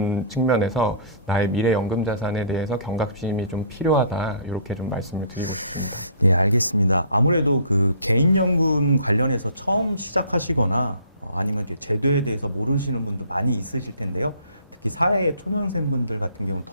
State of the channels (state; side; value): inverted; both; correlation -0.52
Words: 측면에서 나의 미래 연금 자산에 대해서 경각심이 좀 필요하다. 이렇게 좀 말씀을 드리겠습니다. 네, 알겠습니다. 아무래도 개인연금 관련해서 처음 시작하시거나 아니면 이제 제도에 대해서 모르시는 분도 많이 있으실 텐데요. 특히 사회의 초년생분들 같은 경우는